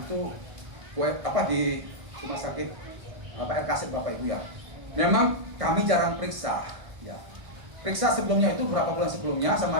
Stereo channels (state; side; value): late; left; 1.6 ms